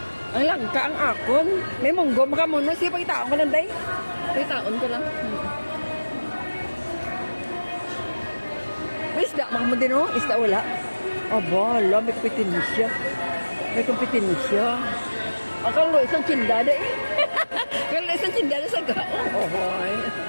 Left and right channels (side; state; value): both; inverted; correlation -1.00